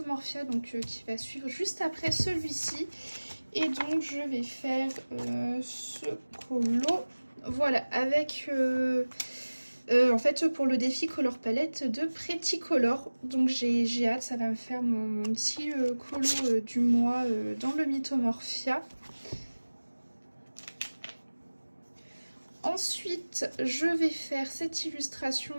donc qui va suivre juste après celui-ci. Et donc je vais faire ce colo, voilà, avec en fait pour le défi Color Palette de Pretty Color. Donc j'ai hâte, ça va me faire mon petit colo du mois dans le Mythomorphia. Ensuite, je vais faire cette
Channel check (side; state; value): both; inverted; correlation -1.00